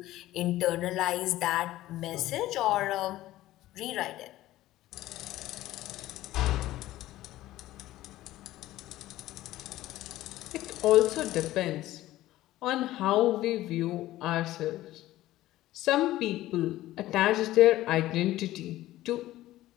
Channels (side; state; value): right; quieter; 15.6 dB